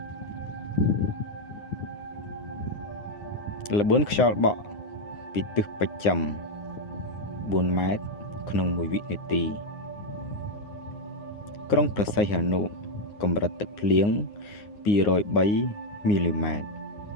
ល្បឿនខ្យល់បក់ពីទិសបស្ចិម4 ម៉ែត្រក្នុង1វិនាទីក្រុងព្រះសីហនុកម្រិតទឹកភ្លៀង203 មីលីម៉ែត្រ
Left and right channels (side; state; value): right; late; 9.6 ms